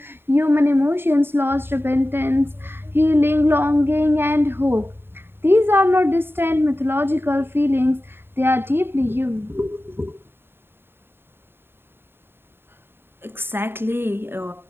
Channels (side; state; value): left; late; 0.11 ms